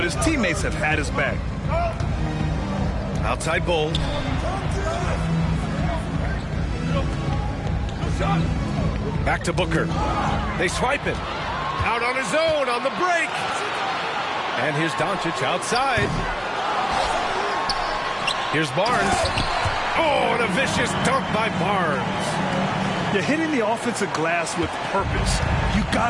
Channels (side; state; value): both; identical; correlation 1.00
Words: his teammates have had his back. Outside Bull. Back to Booker. They swipe it. Out on his own on the break. And here's Doncic outside. Here's Barnes. Oh, and a vicious dunk by Barnes. You're hitting the offensive glass with purpose. You